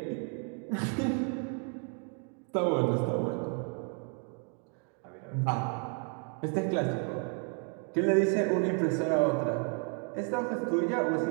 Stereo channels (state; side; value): quieter; left; 39.3 dB